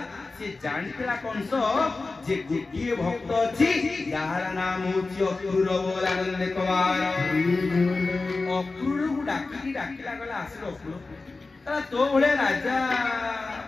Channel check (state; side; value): quieter; right; 3.6 dB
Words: से जानतेला कंस जे गोटिए भक्त अछि यार नाम होछि अक्रूर बोला नंद कवार अक्रूर को डाकिला गला आसे अक्रूर तला तो भले राजा